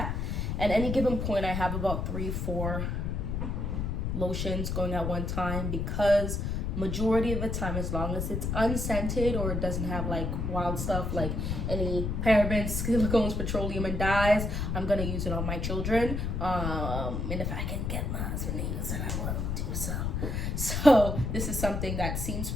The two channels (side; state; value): left; noise; rumble, 1 dB below the sound